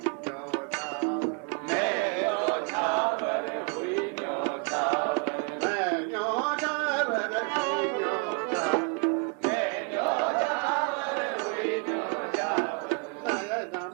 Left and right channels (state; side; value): quieter; left; 35.1 dB